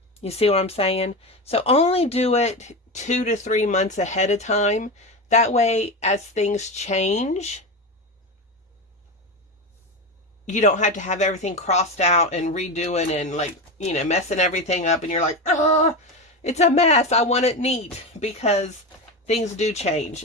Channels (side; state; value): both; normal; correlation 0.19